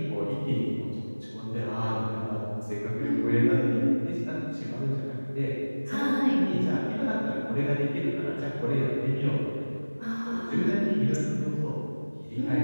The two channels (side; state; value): both; inverted; correlation -1.00